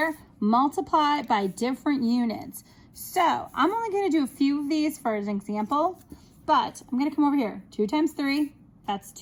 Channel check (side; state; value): both; identical; correlation 1.00